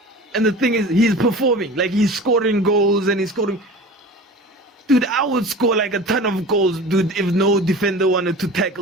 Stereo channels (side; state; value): both; normal; correlation 0.37